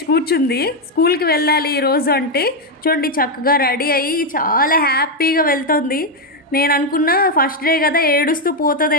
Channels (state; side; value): normal; both; correlation 0.04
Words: కూర్చుంది. స్కూల్కి వెళ్ళాలి ఈరోజు అంటే చూడండి, చక్కగా రెడీ అయ్యి చాలా హ్యాపీగా వెళ్తుంది. నేను అనుకున్నా ఫస్ట్ డే కదా ఏడుస్తూ